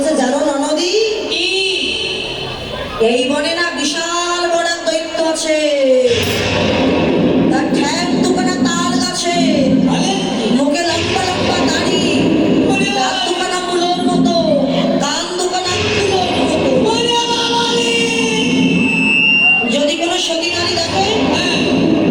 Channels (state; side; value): identical; both; correlation 1.00